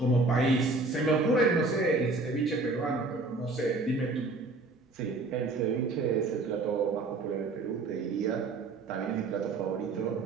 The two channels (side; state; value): left; quieter; 3.4 dB